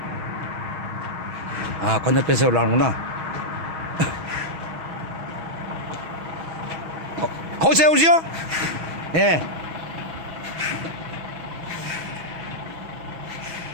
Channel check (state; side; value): late; left; 6.2 ms